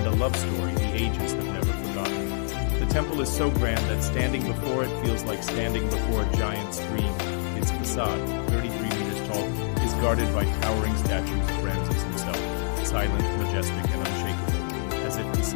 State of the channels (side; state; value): right; silent; digital silence